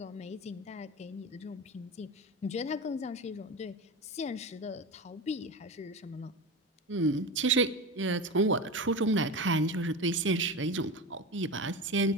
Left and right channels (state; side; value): normal; both; correlation 0.25